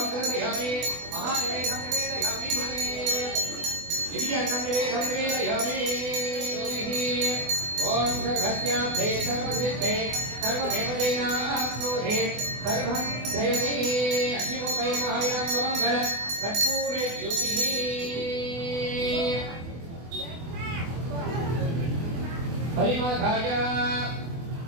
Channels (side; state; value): left; late; 24 ms